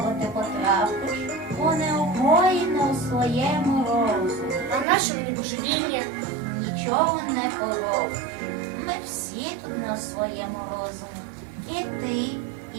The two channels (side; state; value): left; drops out; at 4.9 s